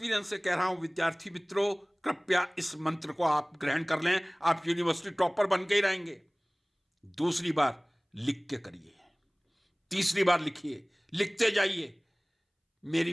से कह रहा हूं। विद्यार्थी मित्रों, कृपया इस मंत्र को आप ग्रहण कर लें, आप यूनिवर्सिटी टॉपर बन के ही रहेंगे। दूसरी बार लिख के करिए, तीसरी बार लिखिए, लिखते जाइए। मेरी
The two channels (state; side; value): identical; both; correlation 1.00